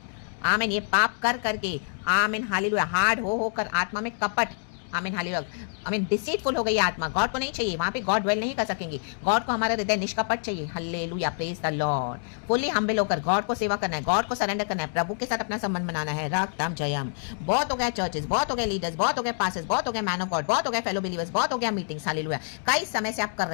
आमीन, ये पाप कर करके, आमीन, हालेलुया, हार्ड हो कर आत्मा में कपट, आमीन, हालेलुया, आमीन, डिसीटफुल हो गई आत्मा, गॉड को नहीं चाहिए, वहां पे गॉड ड्वेल नहीं कर सकेंगे। गॉड को हमारा हृदय निष्कपट चाहिए। Hallelujah, praise the Lord. Fully humble होकर गॉड को सेवा करना है, गॉड को सरेंडर करना है, प्रभु के साथ अपना संबंध बनाना है। रक्तम जयम। बहुत हो गया चर्चेस, बहुत हो गए लीडर्स, बहुत हो गए पास्टर्स, बहुत हो गए मैन ऑफ गॉड, बहुत हो गए फेलो बिलीवर्स, बहुत हो गया मीटिंग्स। हालेलुया, कई समय से आप कर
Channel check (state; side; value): silent; right; digital silence